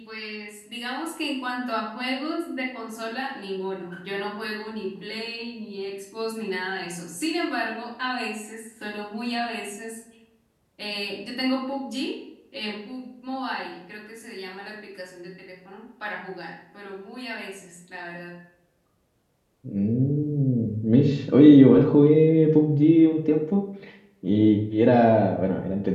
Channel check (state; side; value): identical; both; correlation 1.00